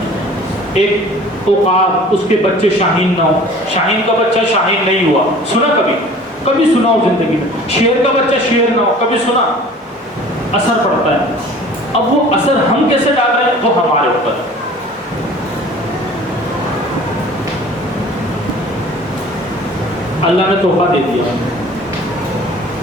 ایک عقاب, اس کے بچے شاہین نہ ہو, شاہین کا بچہ شاہین نہیں ہوا, سنا کبھی سنا ہو زندگی میں. شیر کا بچہ شیر نہ ہو, کبھی سنا. اثر پڑتا ہے. اب وہ اثر ہم کیسے ڈال رہے ہیں وہ ہمارے اوپر. اللہ نے تحفہ دے دیا,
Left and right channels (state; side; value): normal; both; correlation 0.46